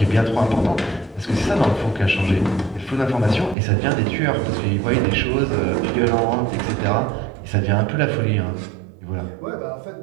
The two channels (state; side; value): drops out; left; at 3.6 s